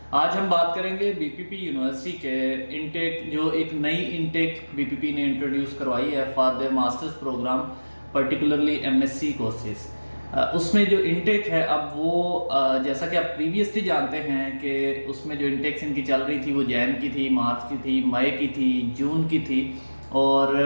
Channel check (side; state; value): both; inverted; correlation -1.00